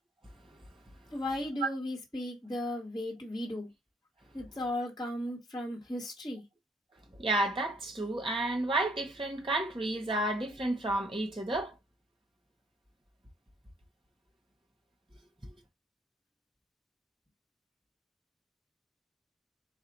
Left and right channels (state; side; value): normal; both; correlation 0.65